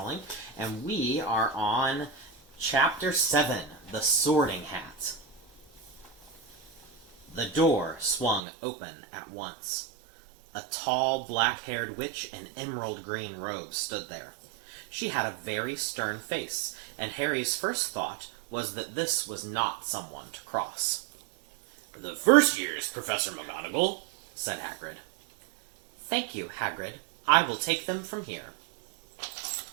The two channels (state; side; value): drops out; left; at 8.4 s